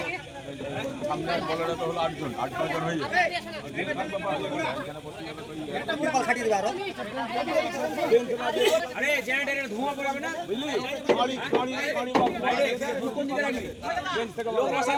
সামনে বলাটা তো হলো 8 জন হয়ে যাবে। আরে জেনারেটরের ধোঁয়া পড়াবে না, বুঝলি? কোন দিকে রাখবি? লোক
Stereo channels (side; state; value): both; identical; correlation 1.00